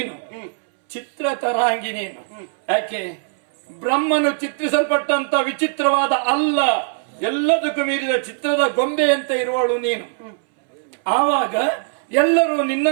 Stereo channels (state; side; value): silent; left; 65 dB below the other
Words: ಚಿತ್ರ ತರಾಂಗಿ ನೀನು. ಯಾಕೆ? ಬ್ರಹ್ಮನು ಚಿತ್ರಿಸಲ್ಪಟ್ಟಂತ ವಿಚಿತ್ರವಾದ ಅಲ್ಲ, ಎಲ್ಲದಕ್ಕೂ ಮೀರಿದ ಚಿತ್ರದ ಗೊಂಬೆಯಂತೆ ಇರುವಳು ನೀನು. ಆವಾಗ ಎಲ್ಲರೂ